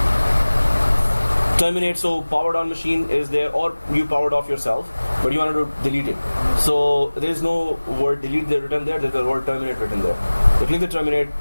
Terminate, so powered on machine is there, or you powered off yourself, but you wanted to delete it. So there is no word delete there written there. There's the word terminate written there. You click the terminate,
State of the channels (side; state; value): both; inverted; correlation -1.00